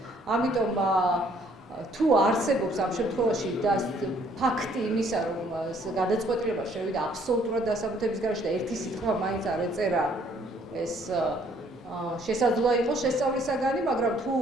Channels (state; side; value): normal; both; correlation 0.63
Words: ამიტომ თუ არსებობს ამ შემთხვევაში და ფაქტი იმისა, რომ გადაწყვეტილება შევიდა აბსოლუტურად დასაბუთების გარეშე და ერთი სიტყვა მაინც არ ეწერა, ეს შესაძლოა იყოს შესწავლისაგანი, მაგრამ თუ